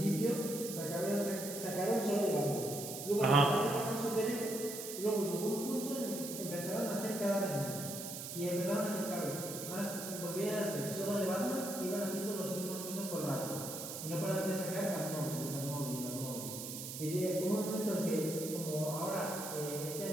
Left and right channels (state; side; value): noise; right; hiss, 7 dB below the sound